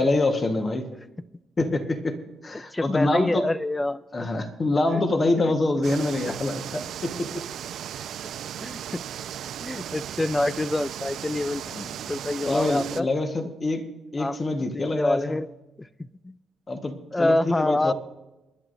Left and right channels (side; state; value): both; normal; correlation 0.91